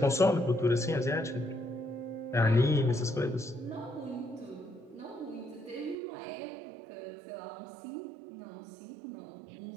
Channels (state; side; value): drops out; left; at 6.0 s